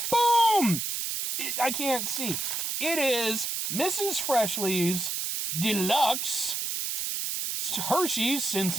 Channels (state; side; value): noise; right; hiss, 2 dB below the sound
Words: Boom! I can't see. It is Mrs. Freshley's Deluxe Hershey's since